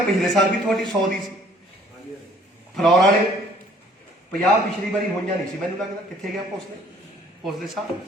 पिछले साल भी थोड़ी 100 दी सी। फलौर वाले 50 पिछली बारी होईयां नहीं सी मैनूं लगदा कित्थे गया भोसले साहब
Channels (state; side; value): normal; both; correlation 0.58